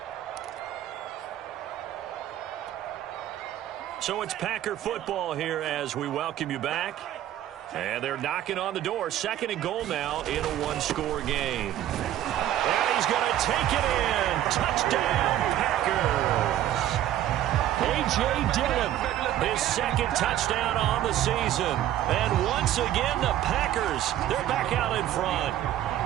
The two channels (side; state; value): left; quieter; 12.5 dB